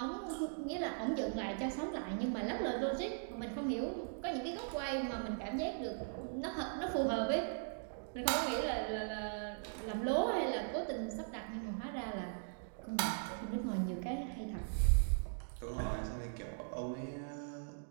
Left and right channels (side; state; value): left; silent; digital silence